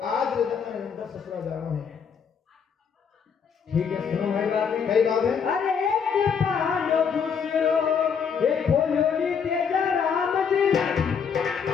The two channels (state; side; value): quieter; right; 6.7 dB